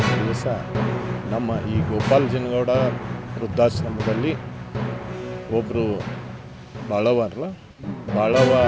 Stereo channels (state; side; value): identical; both; correlation 1.00